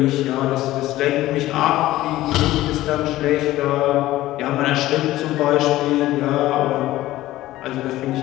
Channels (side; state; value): right; quieter; 15.8 dB